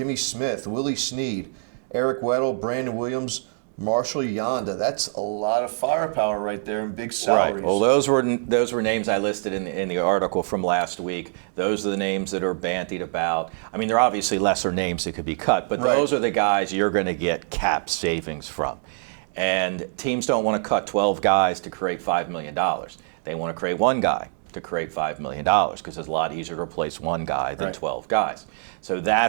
Smith, Willie Snead, Eric Weddle, Brandon Williams, Marshall Yonda. That's a lot of firepower right there and big salaries. Right. Well, those were names I listed in the article from last week. Those are the names that are bandied about. I mean, they're obviously lesser names that could be cut, but those are the guys you're going to get cap savings from. And teams don't want to cut 12 guys to create $5 million. They want to create one guy to create $5 million because it's a lot easier to replace one guy than 12 guys. So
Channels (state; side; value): silent; left; digital silence